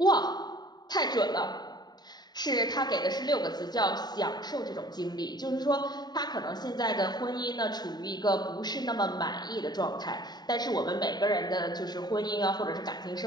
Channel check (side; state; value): right; late; 0.20 ms